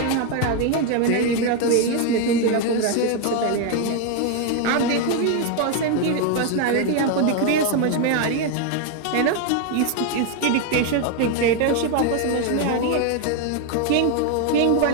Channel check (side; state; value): both; different; correlation 0.01